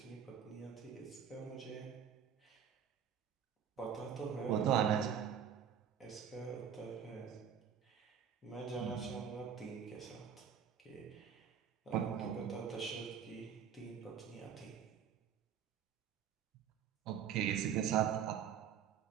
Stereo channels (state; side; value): quieter; left; 8.3 dB